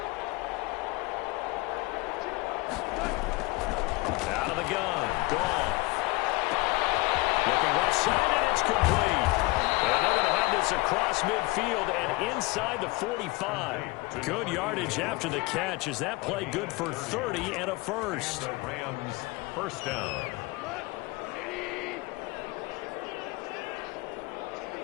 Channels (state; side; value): quieter; right; 23.3 dB